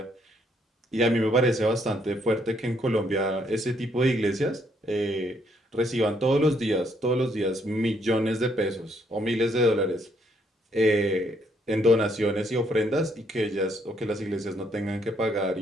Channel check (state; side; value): normal; both; correlation 0.71